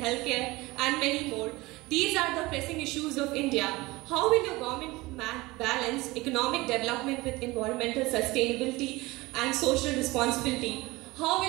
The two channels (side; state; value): left; quieter; 21.1 dB